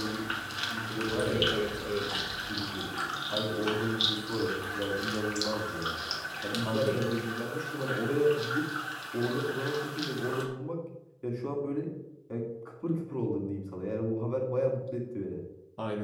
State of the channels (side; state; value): both; identical; correlation 1.00